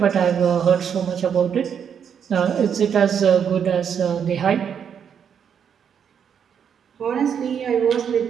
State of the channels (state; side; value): quieter; left; 7.8 dB